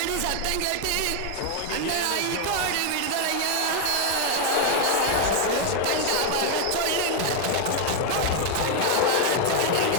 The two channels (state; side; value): different; both; correlation 0.00